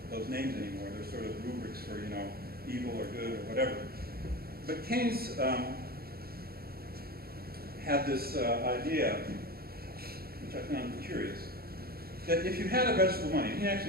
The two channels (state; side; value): late; left; 0.44 ms